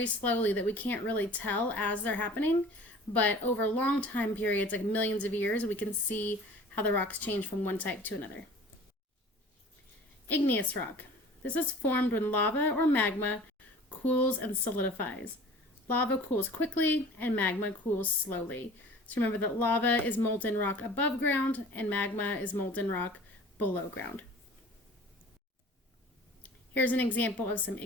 slowly that we can't really tell as they're happening, but over long time periods, like millions of years, we can see how the rocks change from one type to another. Igneous rock. This is formed when lava or magma cools and solidifies. Lava cools quickly and magma cools slowly. So remember that lava is molten rock above ground and magma is molten rock below ground. Here's an example of some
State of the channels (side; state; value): both; normal; correlation 0.45